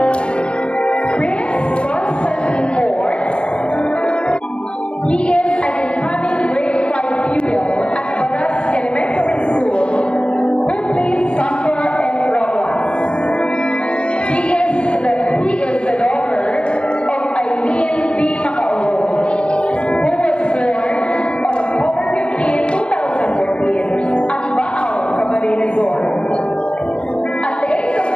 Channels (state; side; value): late; right; 0.058 ms